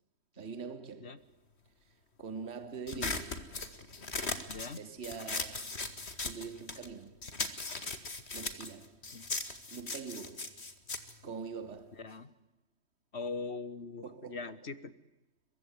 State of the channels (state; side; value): late; right; 3.1 ms